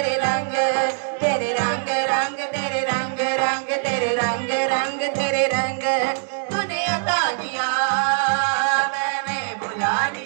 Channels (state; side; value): silent; left; digital silence